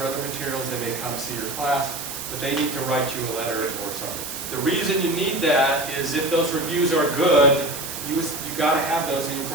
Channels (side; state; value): right; noise; hiss, 7 dB below the sound